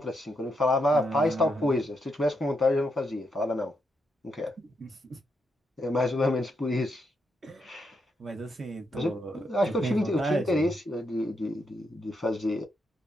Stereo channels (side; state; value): both; normal; correlation 0.81